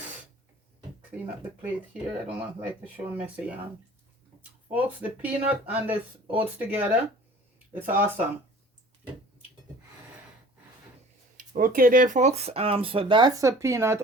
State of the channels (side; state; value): both; normal; correlation 0.47